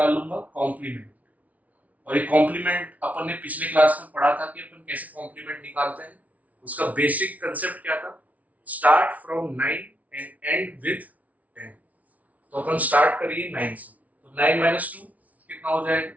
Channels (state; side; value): late; left; 0.070 ms